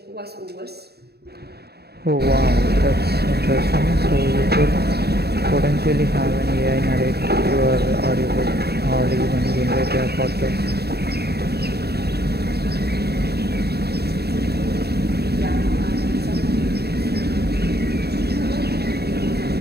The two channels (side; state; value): left; late; 0.47 ms